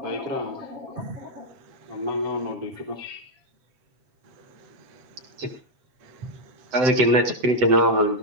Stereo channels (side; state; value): left; late; 7.8 ms